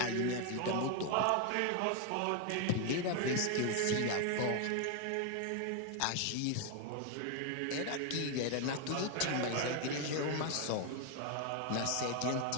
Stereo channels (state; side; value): different; both; correlation 0.01